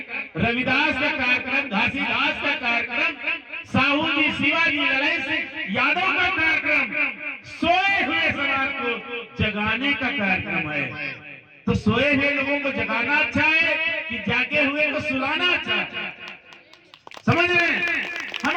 रविदास का कार्यक्रम, घासीदास का कार्यक्रम, साहू जी, शिवाजी, लड़ाई से यादव का कार्यक्रम, सोए हुए समाज को जगाने का कार्यक्रम है। तो सोए हुए लोगों को जगाना अच्छा है कि जागे हुए को सुलाना अच्छा है? समझ रहे हैं?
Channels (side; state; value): both; identical; correlation 1.00